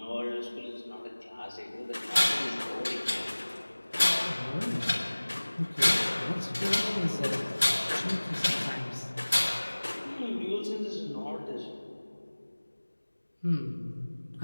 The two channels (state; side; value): inverted; both; correlation -1.00